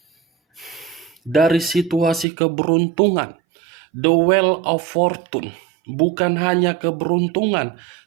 Dari situasi keberuntungan. The Wheel of Fortune. Bukan hanya keberuntungan,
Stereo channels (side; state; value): left; drops out; at 2.2 s